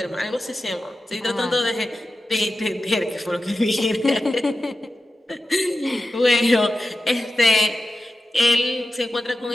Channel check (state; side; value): normal; both; correlation 0.91